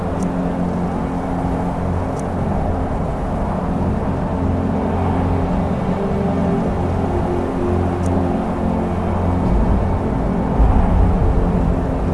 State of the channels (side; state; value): both; identical; correlation 1.00